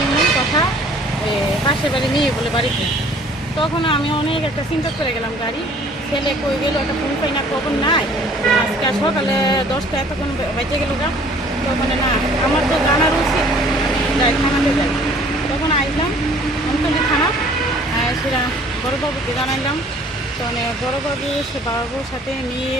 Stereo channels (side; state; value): both; normal; correlation 0.54